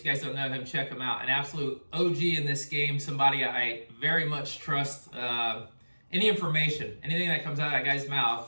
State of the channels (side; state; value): both; inverted; correlation -1.00